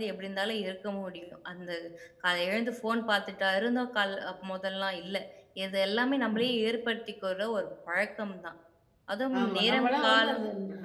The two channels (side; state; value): both; identical; correlation 1.00